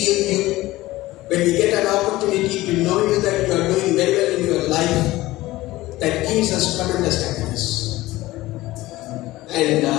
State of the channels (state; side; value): quieter; right; 17.9 dB